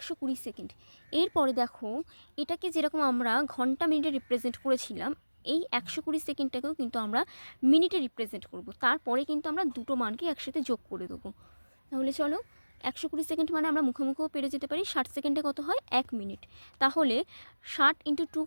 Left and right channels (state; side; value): inverted; both; correlation -1.00